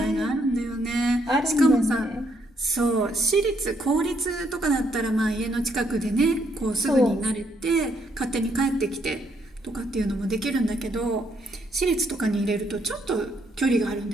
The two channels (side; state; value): both; normal; correlation 0.73